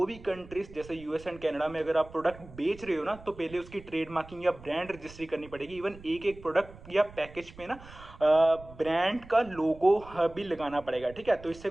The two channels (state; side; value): noise; right; rumble, 19 dB below the sound